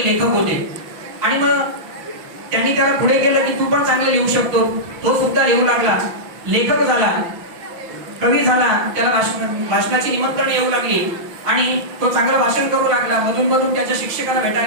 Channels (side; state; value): left; late; 5.9 ms